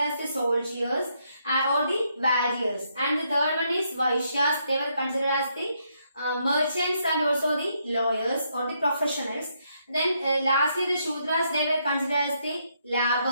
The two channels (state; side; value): inverted; both; correlation -0.76